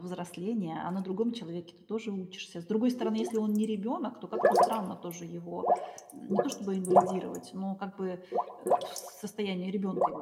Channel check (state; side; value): identical; both; correlation 1.00